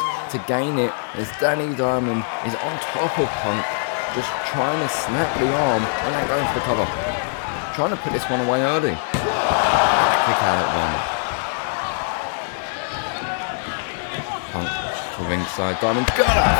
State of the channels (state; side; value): silent; right; digital silence